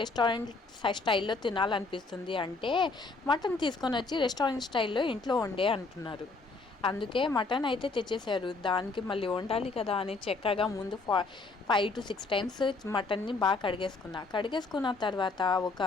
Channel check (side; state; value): right; quieter; 3.8 dB